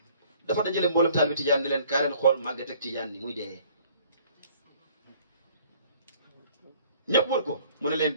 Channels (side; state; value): both; inverted; correlation -0.55